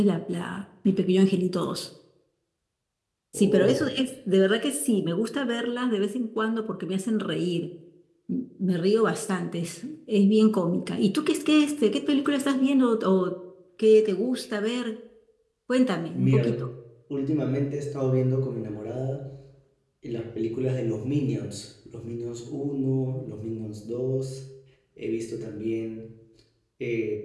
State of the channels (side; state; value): both; identical; correlation 1.00